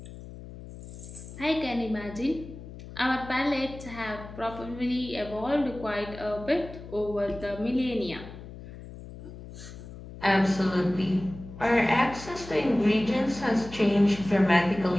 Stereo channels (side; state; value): left; noise; hum, 14 dB below the sound